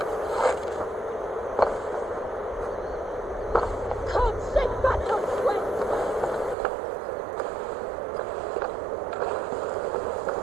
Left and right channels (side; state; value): left; drops out; at 6.6 s